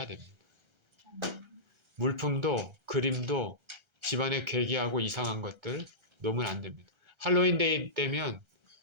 됩니다. 물품도 그림도 집안에 괴기하고 이상한 것들 놓으면 안 됩니다. 할로윈 데이 때면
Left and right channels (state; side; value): late; left; 1.3 ms